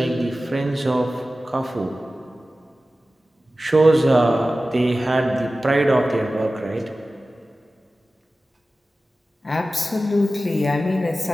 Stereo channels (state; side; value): normal; both; correlation 0.95